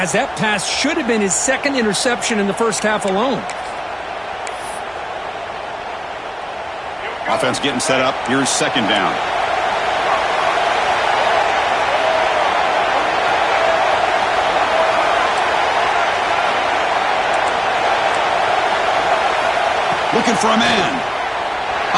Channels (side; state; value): both; identical; correlation 1.00